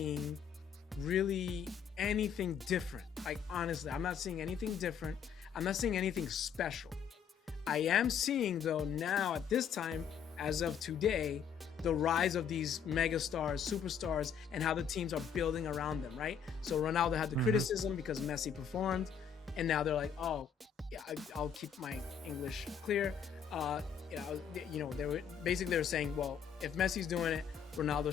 really anything different. Like, honestly, I'm not seeing anything different. I'm not seeing anything special. I am seeing, though, now at this time, as of today, the rise of these megastars, superstars, and how the teams are building around them, right? So Ronaldo had the criticism because Messi performed, and now they're like, oh, yeah, I'll keep my English clear. They were saying, well, if Messi's doing it, Ronaldo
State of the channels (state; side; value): quieter; right; 7.4 dB